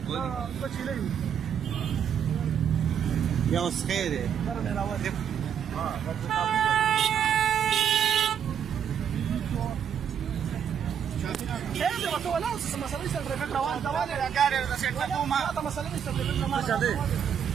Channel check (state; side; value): quieter; left; 8.3 dB